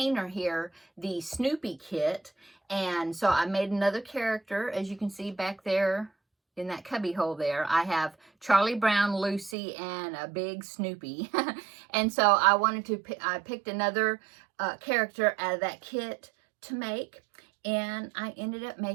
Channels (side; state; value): left; drops out; at 9.6 s